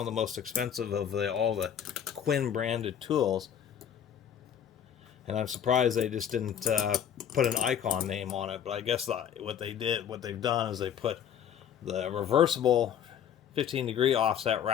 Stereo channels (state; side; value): quieter; right; 8.9 dB